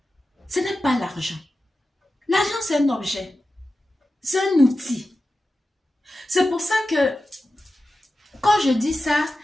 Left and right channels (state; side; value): normal; both; correlation 0.93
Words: Ce n'est pas l'argent. L'argent, c'est un objet. C'est un outil. C'est pour ça que quand je dis ça,